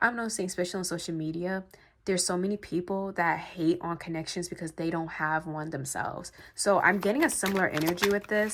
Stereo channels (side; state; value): both; identical; correlation 1.00